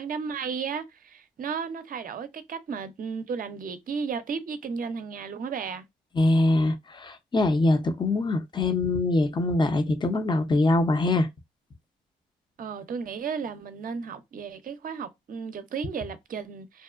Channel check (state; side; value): normal; both; correlation 0.73